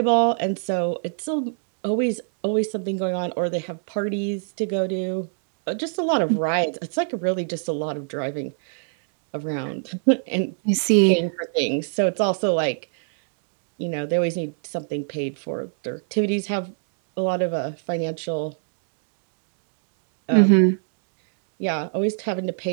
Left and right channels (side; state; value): left; silent; digital silence